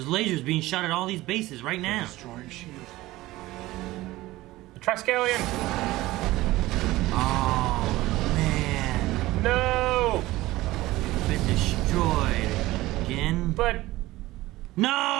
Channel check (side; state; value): left; quieter; 17.9 dB